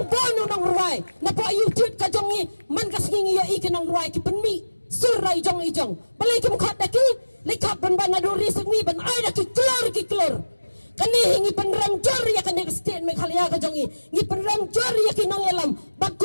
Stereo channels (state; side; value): inverted; both; correlation -1.00